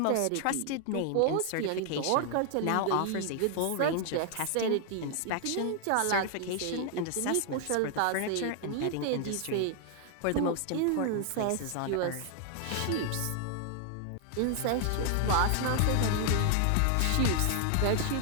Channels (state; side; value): different; both; correlation 0.00